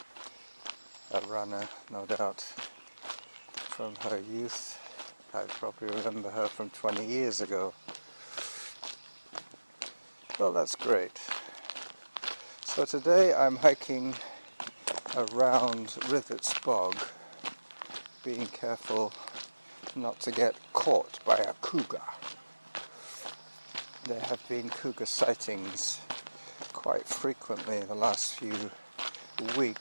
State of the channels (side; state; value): both; inverted; correlation -1.00